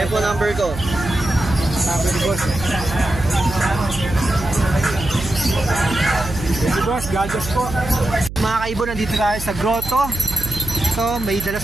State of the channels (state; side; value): noise; right; hum, 10 dB below the sound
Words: po number ko. Number ni boss. Thank you, boss. God bless po. Mga kaibo, nandito tayo sa grotto. Ito, may dala